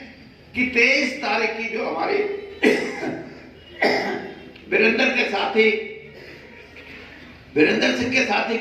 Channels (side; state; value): both; identical; correlation 1.00